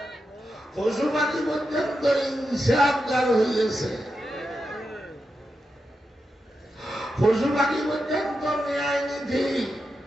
পশু পাখি পর্যন্ত ইনসাফগার হয়ে গেছে, পশু পাখি পর্যন্ত ন্যায় নীতি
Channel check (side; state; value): both; normal; correlation 0.88